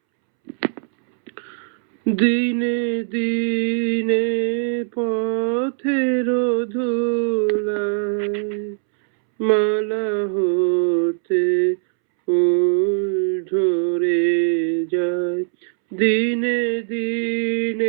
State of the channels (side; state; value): left; silent; 65 dB below the other